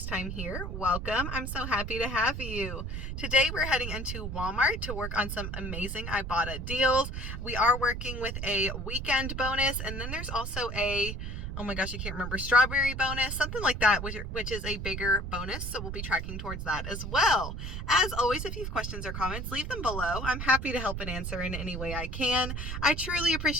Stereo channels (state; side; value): noise; right; rumble, 5 dB below the sound